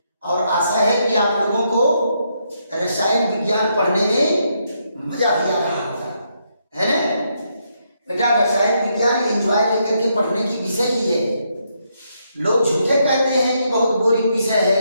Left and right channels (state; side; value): inverted; both; correlation -0.77